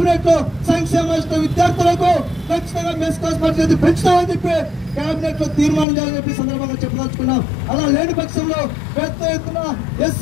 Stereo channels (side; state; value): right; drops out; at 5.9 s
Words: లో సంక్షేమ విద్యార్థులకు ఖచ్చితంగా మెస్ కాస్ట్ పరిస్థితి పెంచుతామని చెప్పి కేబినెట్ లో తీర్మానం చేయాలని చెప్పి సందర్భంగా చెప్పదలుచుకున్నాం. అలా లేని పక్షంలో పెద్ద ఎత్తున